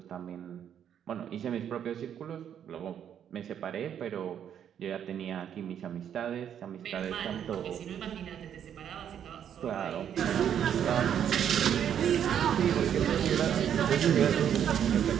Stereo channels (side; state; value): left; quieter; 9.2 dB